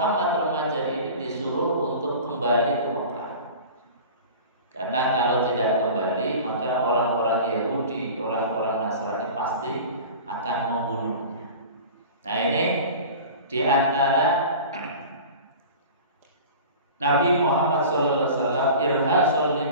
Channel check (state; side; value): inverted; both; correlation -0.38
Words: remaja ini disuruh untuk kembali ke Mekah. Karena kalau tidak kembali, maka orang-orang Yahudi, orang-orang Nasrani pasti akan membunuhnya. Nah, ini di antara Nabi Muhammad SAW irhasul